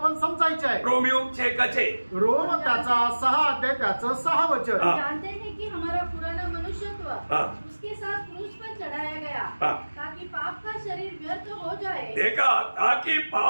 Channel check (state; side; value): inverted; both; correlation -1.00